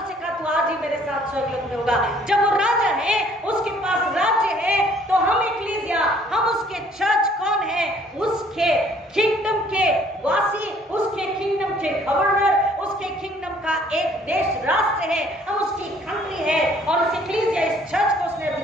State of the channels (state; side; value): normal; both; correlation 0.59